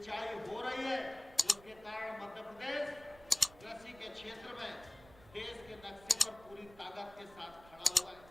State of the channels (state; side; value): noise; right; rumble, 23 dB below the sound